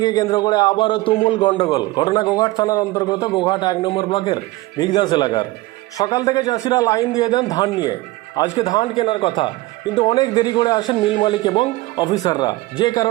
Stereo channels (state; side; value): quieter; left; 19.6 dB